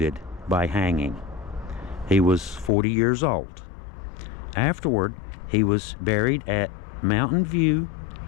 by hanging. He was 40 years old. Afterward, he was buried at Mountain View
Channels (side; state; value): right; drops out; at 2.7 s